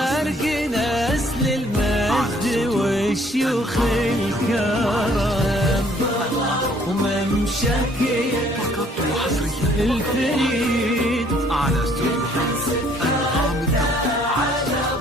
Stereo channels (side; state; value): both; normal; correlation 0.61